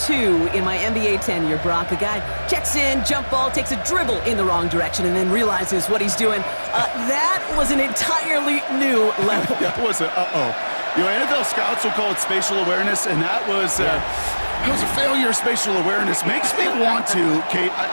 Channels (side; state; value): both; inverted; correlation -1.00